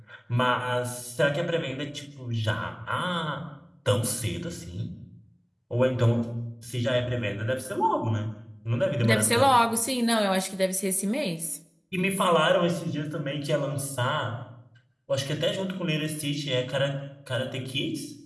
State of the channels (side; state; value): both; identical; correlation 1.00